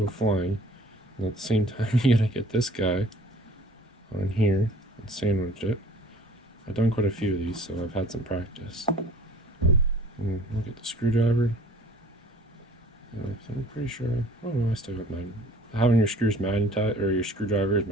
flying. And at the same time you gotta get this guy on here and sandwich it. I've done quite a few of these, so I've had some practice. And look at the screwdriver. I'm pretty sure. Oh no, I still got mine. Having your screws magnetized or your screwdriver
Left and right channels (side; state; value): both; normal; correlation 0.50